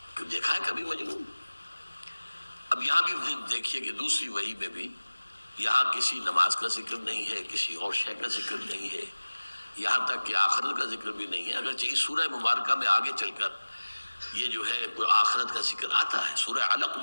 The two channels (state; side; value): inverted; both; correlation -1.00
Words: کہ دیکھا ہے کبھی مجنون؟ اب یہاں بھی دیکھیے کہ دوسری وحی میں بھی یہاں کسی نماز کا ذکر نہیں ہے، کسی اور شے کا ذکر نہیں ہے، یہاں تک کہ آخرت کا ذکر بھی نہیں ہے، اگرچہ اس سورہ مبارکہ میں آگے چل کر یہ جو ہے آخرت کا ذکر آتا ہے، سورہ علق